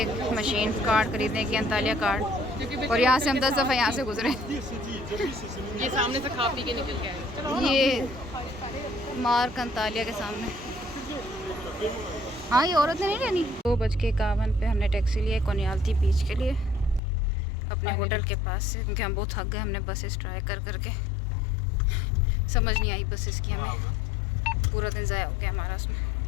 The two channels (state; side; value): drops out; right; at 17.0 s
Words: मशीन कार्ड खरीदने की, अंतालिया कार्ड। और यहाँ से हम 10 दफ़ा यहाँ से गुजरे। ये सामने से खा पी के निकल के आए। ये मार्क अंतालिया के सामने। हाँ, ये औरत ने नहीं लेनी। 2:51 पे हमने टैक्सी लिया कोनियाल्ती बीच के लिए, अपने होटल के पास से, क्योंकि हम बहुत थक गए। हमने बसेस ट्राई कर करके, समझ नहीं आई बसेस की, हमें पूरा दिन ज़ाया हो गया हमारा उसमें।